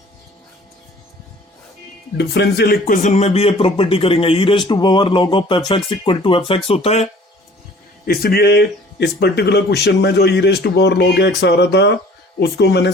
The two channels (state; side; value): normal; both; correlation 0.51